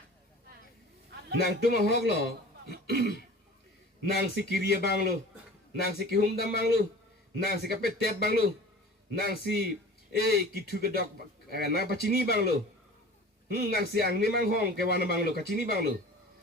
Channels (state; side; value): normal; both; correlation 0.41